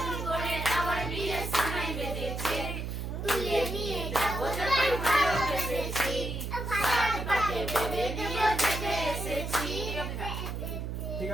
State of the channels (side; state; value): right; noise; hum, 4 dB below the sound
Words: আমার বিয়ে সময় বেঁধেছে তুলে নিয়ে যাবো যখন ভালোবেসেছি পাটে বেঁধে নিয়ে জেগে এসেছি ঠিক